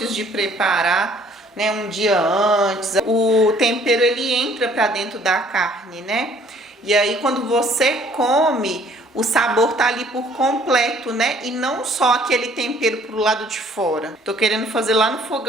de preparar, né, um dia antes, o tempero ele entra pra dentro da carne, né? E aí quando você come, o sabor tá ali por completo, né? E não só aquele tempero pro lado de fora. Tô querendo fazer lá no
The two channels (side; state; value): both; normal; correlation 0.59